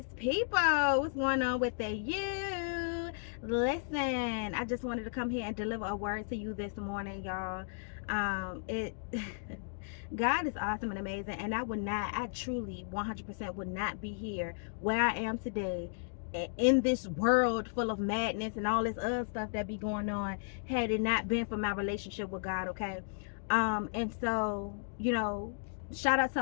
people. What's going on with the you? Listen, I just wanted to come here and deliver a word to you this morning, y'all. It God is awesome and amazing, and I truly 100% would not be here where I am today in this world full of madness and all this other stuff that be going on had it not been for my relationship with God, okay? And so, shout out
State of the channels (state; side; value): silent; right; digital silence